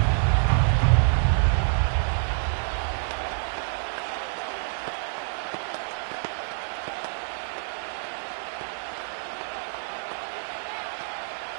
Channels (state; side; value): silent; left; digital silence